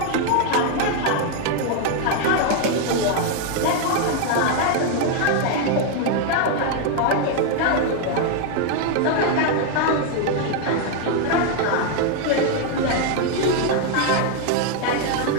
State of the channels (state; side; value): different; both; correlation 0.00